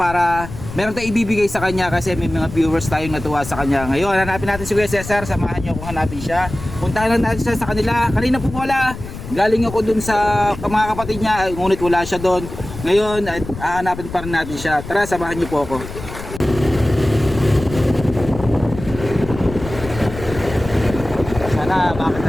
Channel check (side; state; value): left; noise; rumble, 11 dB below the sound